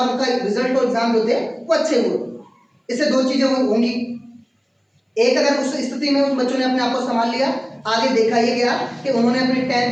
उनका रिजल्ट और एग्जाम जो थे वो अच्छे हुए। इससे 2 चीजें होंगी, एक, अगर उस स्थिति में उस बच्चों ने अपने आप को संभाल लिया, आगे देखा ये गया कि उन्होंने अपनी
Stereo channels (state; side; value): identical; both; correlation 1.00